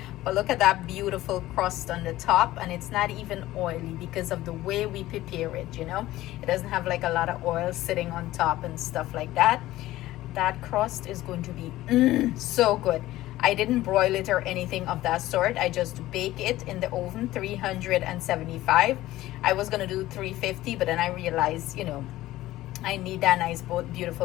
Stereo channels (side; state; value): right; quieter; 16.0 dB